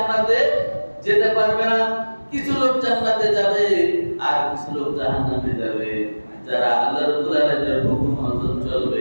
যেতে পারবে না। কিছু লোক জান্নাতে যাবে আর কিছু লোক জাহান্নামে যাবে, যারা আল্লাহ রাব্বুল আলামিনের হুকুম মতো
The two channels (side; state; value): both; inverted; correlation -1.00